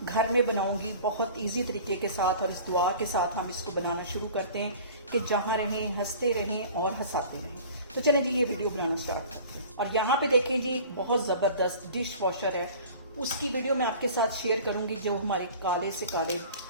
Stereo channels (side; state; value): both; inverted; correlation -0.43